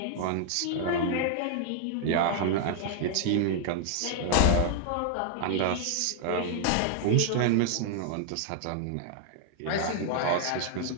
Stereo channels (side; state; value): both; different; correlation -0.01